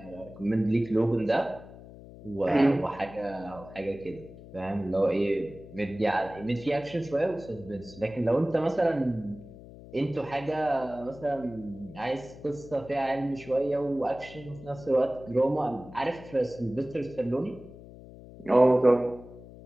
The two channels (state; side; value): noise; left; hum, 17 dB below the sound